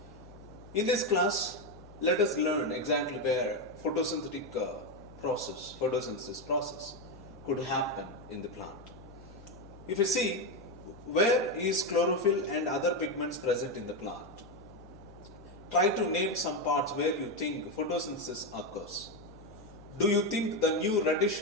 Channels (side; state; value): both; normal; correlation 0.09